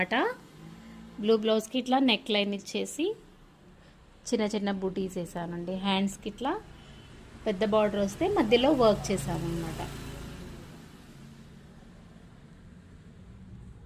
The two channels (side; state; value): both; identical; correlation 1.00